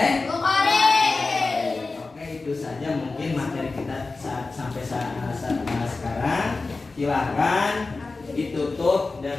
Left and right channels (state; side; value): quieter; right; 3.7 dB